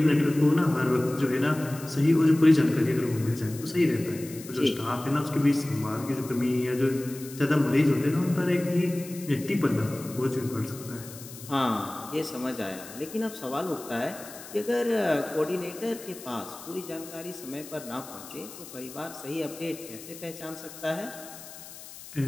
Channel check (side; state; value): left; noise; hiss, 15 dB below the sound